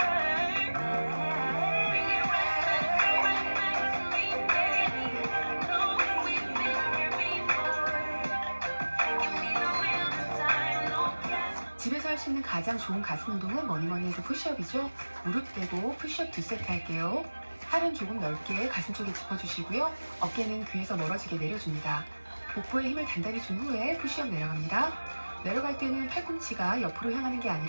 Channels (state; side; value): inverted; both; correlation -1.00